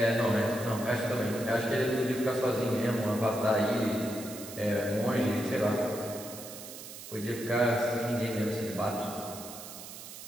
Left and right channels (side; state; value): right; noise; hiss, 12 dB below the sound